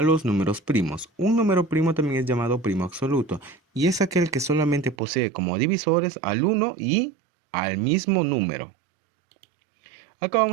los números primos. Un número primo también es llamado primo absoluto y es aquel que solamente posee como divisores al 1 y al mismo número. Acá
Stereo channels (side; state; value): left; drops out; at 5.0 s